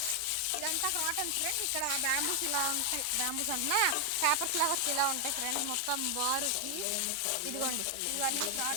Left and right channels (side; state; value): both; different; correlation 0.00